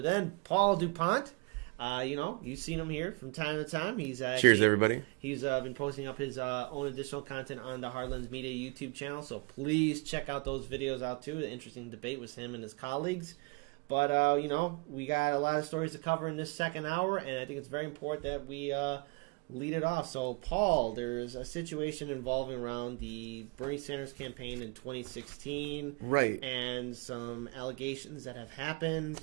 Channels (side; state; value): left; quieter; 29.3 dB